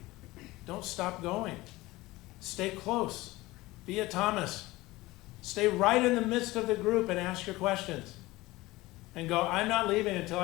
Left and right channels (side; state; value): right; quieter; 19.6 dB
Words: Don't stop going. Stay close. Be a Thomas. Stay right in the midst of the group and ask your questions. And go, I'm not leaving until